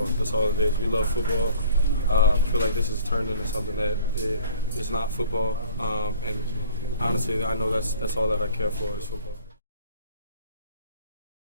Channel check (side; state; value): both; inverted; correlation -0.50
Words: That's all it is. We love football. I feel like this has turned into something that is not football. And honestly, I know that's all that I care for is football.